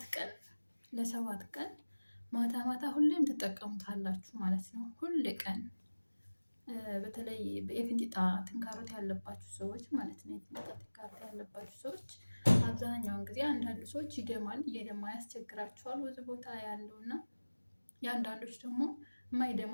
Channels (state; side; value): inverted; both; correlation -1.00